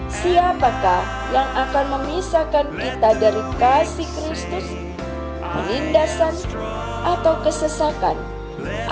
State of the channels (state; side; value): identical; both; correlation 1.00